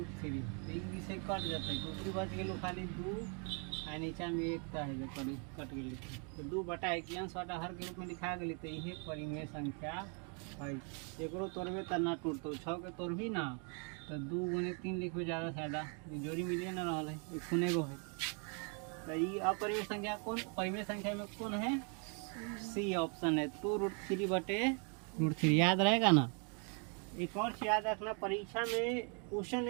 तो एक से कट जाता है, दूसरी बच गेलू खाली 2 आ नीचा में 1 है जो कट गई। तो 2 बटा 1 अंश बटा हर के रूप में लिखा गई। तो यही परिमेय संख्या है। एकरो तोड़बे तो ना टूटतो, 6 के तोड़बी ना तो 2 गुने 3 लिखबे ज़्यादा फायदा, जोड़ी मिलिए ना रहा है, एक खुने गो है। तो ये अपरिमेय संख्या कौन? परिमेय संख्या में कौन है? सी ऑप्शन है, 2√3 बटे √3। याद रहेगा ना? एक और चीज याद रखना, परीक्षा में क्वेश्चन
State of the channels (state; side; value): quieter; left; 38.2 dB